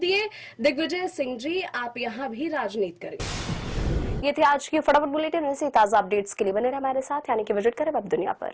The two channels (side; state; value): both; identical; correlation 1.00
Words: दिग्विजय सिंह जी आप यहाँ भी राजनीति करेंगे। ये थे आज की फटाफट बुलेटिन। ऐसे ताजा अपडेट्स के लिए बने रहे हमारे साथ, यानी कि विजिट करें वेब दुनिया